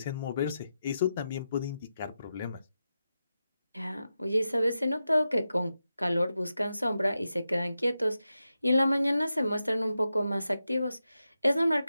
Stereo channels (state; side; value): inverted; both; correlation -0.89